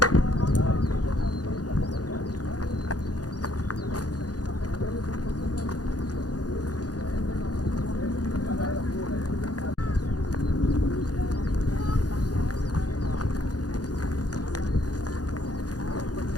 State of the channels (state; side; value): late; right; 0.68 ms